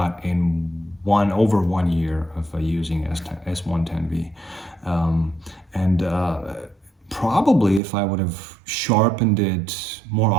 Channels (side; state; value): left; drops out; at 7.8 s